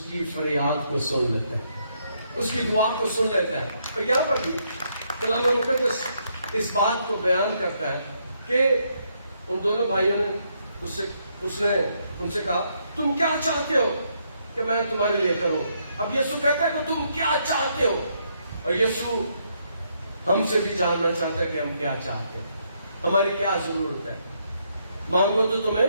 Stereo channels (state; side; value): inverted; both; correlation -0.75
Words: کی فریاد کو سن لیتے ہیں، اس کی دعا کو سن لیتا ہے. اور یہاں پر بھی کلام مقدس اس بات کو بیان کرتا ہے کہ ان دونوں بھائیوں نے اس نے ان سے کہا تم کیا چاہتے ہو کہ میں تمہارے لیے کروں. اب یسوع کہتا ہے کہ تم کیا چاہتے ہو. اور یسوع ہم سے بھی جاننا چاہتا ہے کہ ہم کیا چاہتے ہیں، ہماری کیا ضرورت ہے. مانگو تو تمہیں